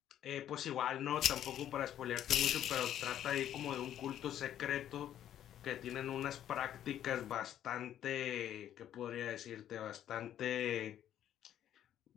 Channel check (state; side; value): quieter; right; 11.0 dB